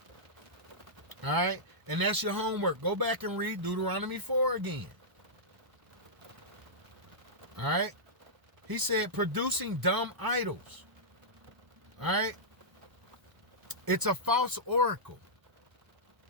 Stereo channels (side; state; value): left; late; 1.0 ms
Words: All right, and that's your homework. Go back and read Deuteronomy 4 again. All right, he said producing dumb idols. All right, it's a false oracle.